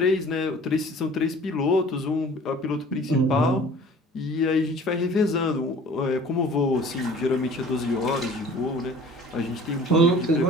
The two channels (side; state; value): both; normal; correlation 0.47